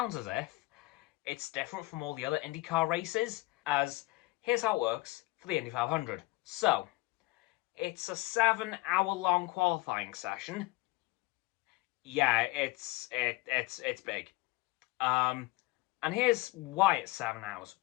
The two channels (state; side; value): quieter; right; 21.4 dB